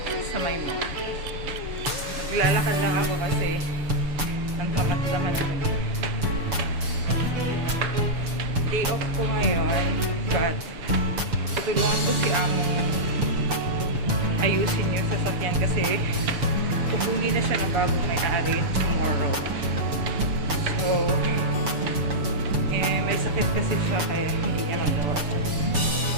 mall. Maglalakad lang ako kasi ang tamad-tamad ko. Day off ko ngayon, but tutulungan ko si Among ayusin yung sasakyan kasi kukunin na siya ng bagong may-ari tomorrow. So, may sakit kasi siya kaya hindi niya magawa.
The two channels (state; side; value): late; left; 7.0 ms